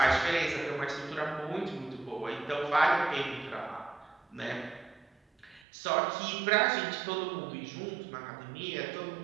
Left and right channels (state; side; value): drops out; left; at 5.7 s